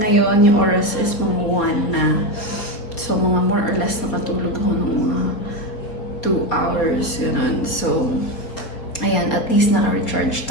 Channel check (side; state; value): right; late; 4.3 ms